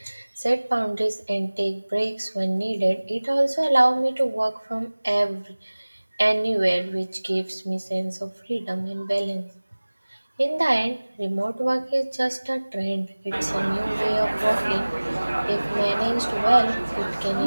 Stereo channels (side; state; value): both; inverted; correlation -1.00